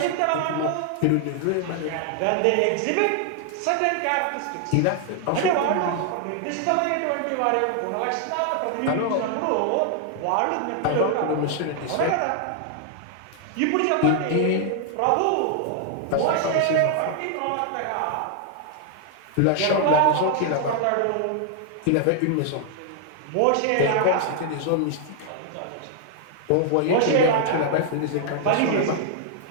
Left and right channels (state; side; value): different; both; correlation 0.00